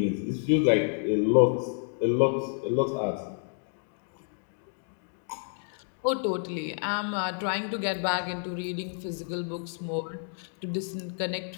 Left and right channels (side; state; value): right; silent; 58 dB below the other